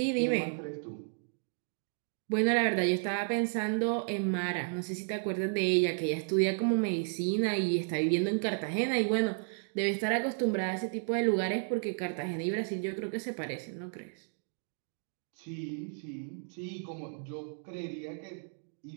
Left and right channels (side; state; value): left; silent; digital silence